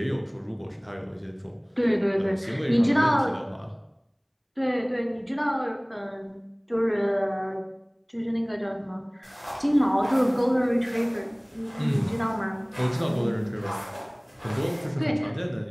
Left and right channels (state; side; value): identical; both; correlation 1.00